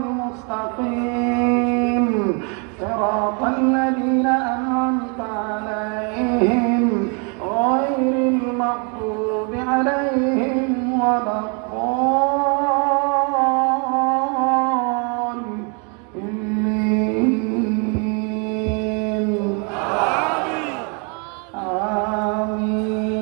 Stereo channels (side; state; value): left; quieter; 36.2 dB